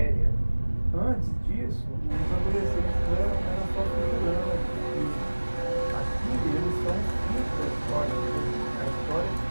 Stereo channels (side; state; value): both; inverted; correlation -1.00